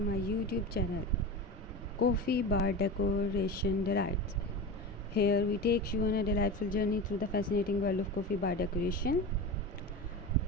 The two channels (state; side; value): normal; both; correlation 0.27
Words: YouTube channel Coffee Bar Decoration Delights. Here we take you on a delightful journey through the fascinating world of coffee bar decoration.